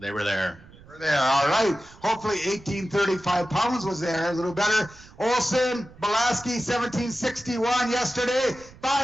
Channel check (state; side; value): noise; right; rumble, 22 dB below the sound